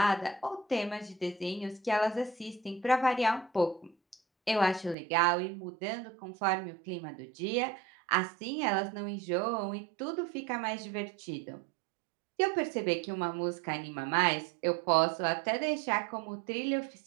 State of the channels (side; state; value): left; drops out; at 5.0 s